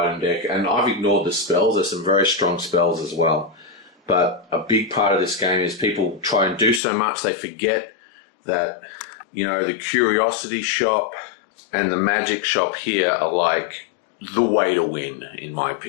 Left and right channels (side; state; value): right; drops out; at 6.8 s